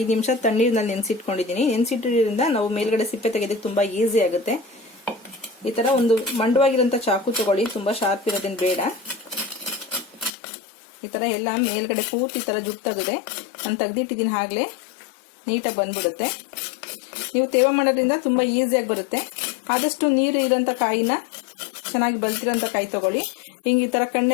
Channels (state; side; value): drops out; right; at 10.3 s